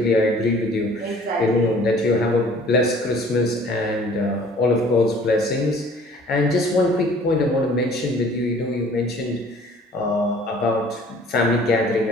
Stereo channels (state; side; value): normal; both; correlation 0.52